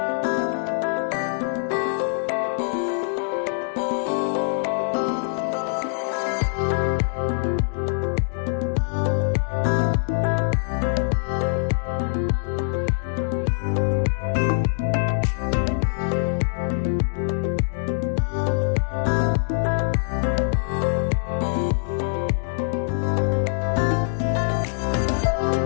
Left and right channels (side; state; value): right; silent; digital silence